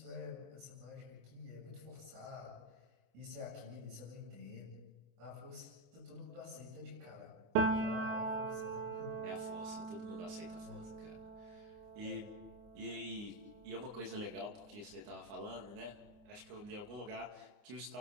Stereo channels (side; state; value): left; late; 24 ms